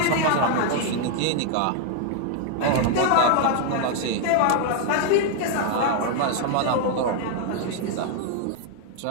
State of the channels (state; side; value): different; both; correlation 0.00